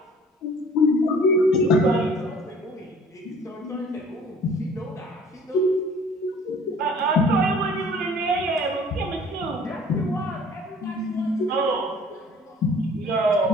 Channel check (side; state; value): both; normal; correlation 0.51